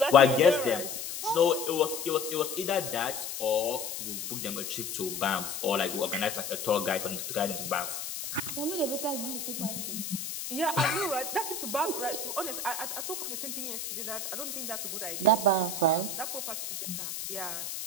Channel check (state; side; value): noise; left; hiss, 6 dB below the sound